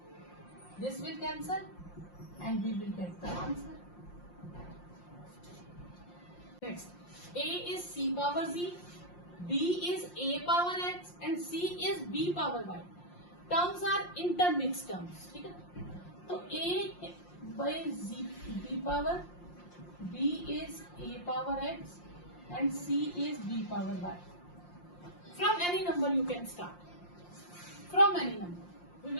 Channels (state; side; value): late; right; 5.7 ms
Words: This will cancel and we will get the answer. Next, A is c power z, B is a power x, and C is b power y. Terms are intermixed terms. ठीक है? तो A by z b power, B is a power x, and C is b power y. From any number you can start. From any number. We